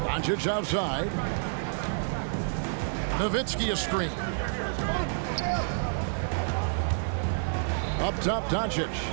Doncic outside. Nowitzki a screen. Up top, Doncic.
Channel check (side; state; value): left; silent; digital silence